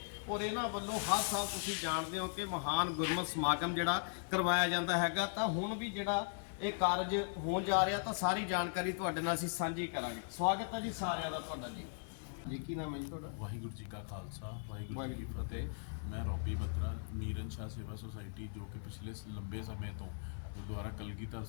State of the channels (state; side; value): silent; right; digital silence